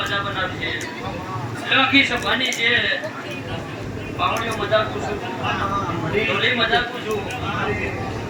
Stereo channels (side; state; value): both; identical; correlation 1.00